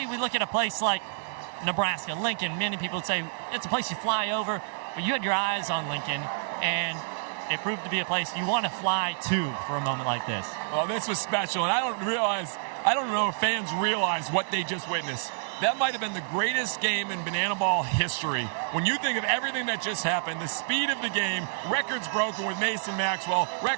we look at a place like Nebraska, Lincoln. Many people would say it's a place you fly over, but you had your eyes on Lincoln, and it proved to be a place you want to fly to for a moment like this. Well, this was special, and I don't know if fans realize what they just witnessed. That might have been the greatest game in Banana Ball history. When you think of everything that just happened, the speed of the game, records broken with Mason Maxwell,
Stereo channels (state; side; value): silent; left; digital silence